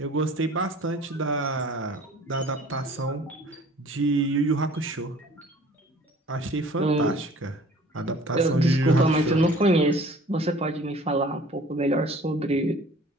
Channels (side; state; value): both; normal; correlation 0.50